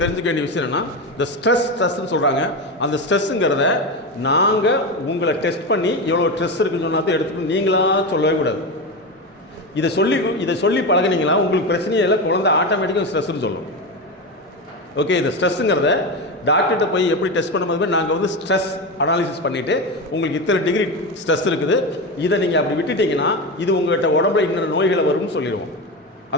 தெரிஞ்சுக்க வேண்டிய விஷயம் என்னென்னா, இந்த ஸ்ட்ரெஸ்ன்னு சொல்கிறாங்க. அந்த ஸ்ட்ரெஸ்ஸுங்கிறத நாங்கள் உங்களை டெஸ்ட் பண்ணி எவ்வளோ ஸ்ட்ரெஸ் இருக்குன்னு சொன்னா தான் எடுத்துக்கணும், நீங்களாக சொல்லவே கூடாது. இதை சொல்லி பழகினீங்களா உங்களுக்கு பிரச்சனையே இல்லை, குழந்தை ஆட்டோமேட்டிக்காக ஸ்ட்ரெஸ்ன்னு சொல்லும். ஓகே, இந்த ஸ்ட்ரெஸ்ஸுங்கிறத டாக்டர்கிட்ட போய் எப்படி டெஸ்ட் பண்ணும்போது நாங்கள் வந்து ஸ்ட்ரெஸ் அனாலிசிஸ் பண்ணிவிட்டு உங்களுக்கு இத்தனை டிகிரி ஸ்ட்ரெஸ் இருக்குது, இதை நீங்கள் அப்படி விட்டுட்டிங்கன்னா இது உங்கள்கிட்ட உடம்புல இன்னொரு நோய்களை வரும்னு சொல்லிடுவோம்.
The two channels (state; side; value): normal; both; correlation 0.18